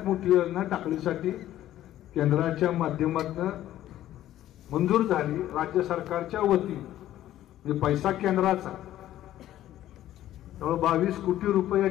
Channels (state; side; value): quieter; right; 13.1 dB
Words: मोठी योजना टाकळीसाठी केंद्राच्या माध्यमातून मंजूर झाली. राज्य सरकारच्या वतीने पैसा केंद्राचा 22 कोटी रुपये या